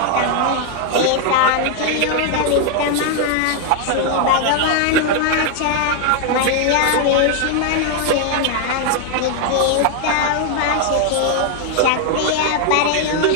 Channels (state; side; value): different; both; correlation 0.00